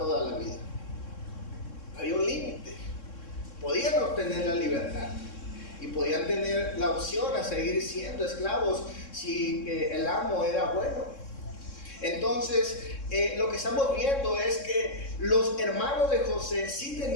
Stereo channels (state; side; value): late; right; 3.6 ms